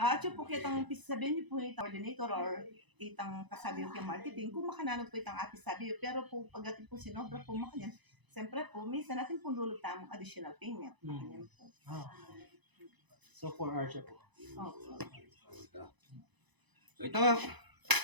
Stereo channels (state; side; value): late; left; 1.0 ms